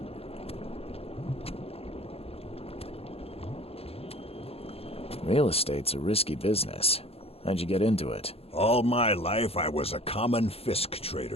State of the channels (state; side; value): late; right; 0.28 ms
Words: Real estate's a risky business. How'd you get into it? All my life I was a common Fisk